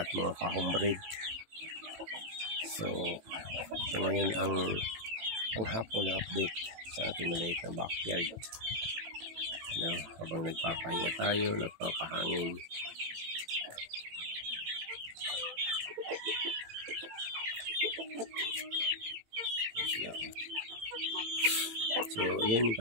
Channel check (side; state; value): left; late; 18 ms